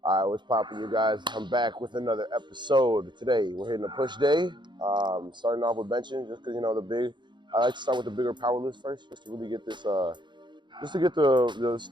All right, what's poppin', you guys? I'm back with another episode. Today, we're hitting a push day. Starting off with benching, just because, I like to start with the bigger power lifts first, just to really get this, just to get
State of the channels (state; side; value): late; left; 0.22 ms